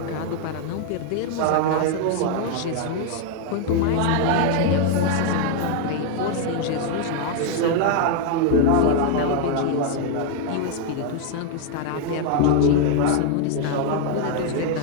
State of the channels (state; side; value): different; both; correlation 0.01